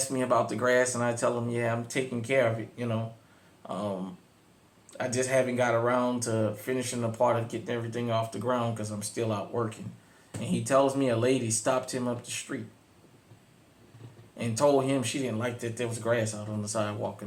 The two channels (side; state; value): both; identical; correlation 1.00